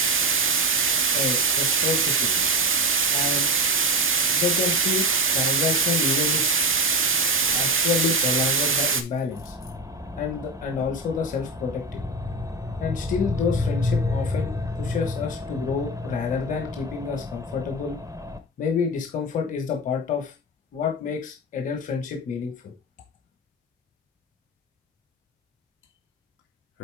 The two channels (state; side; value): normal; both; correlation 0.20